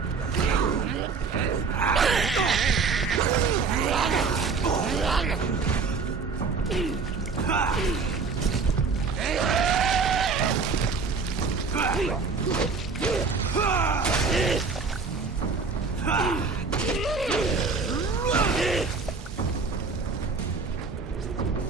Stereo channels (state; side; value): quieter; left; 4.8 dB